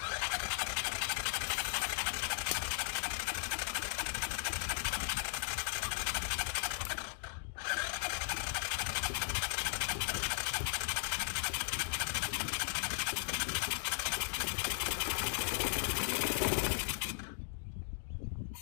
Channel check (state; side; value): silent; right; digital silence